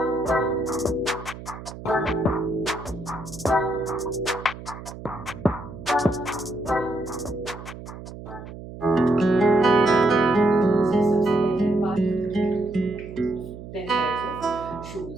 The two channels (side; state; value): right; noise; hum, 13 dB below the sound